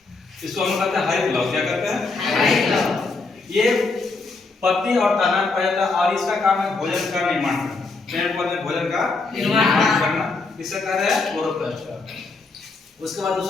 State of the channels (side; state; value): right; quieter; 3.9 dB